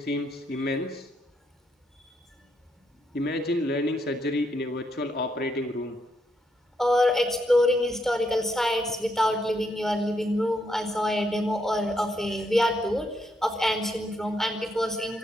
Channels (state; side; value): normal; both; correlation 0.77